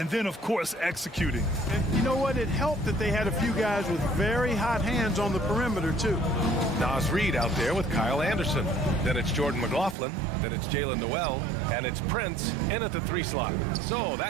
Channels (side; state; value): left; drops out; at 10.0 s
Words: then, of course, executing. And you know what? It helped that they had a few guys with very hot hands on the perimeter, too. Nas Reed out there with Kyle Anderson. Then it's Jordan McLaughlin. Then it's Jalen Noel. And it's Prince in at the 3 slot. So